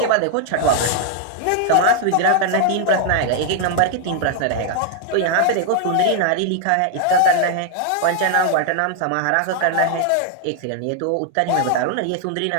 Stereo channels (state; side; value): different; both; correlation 0.00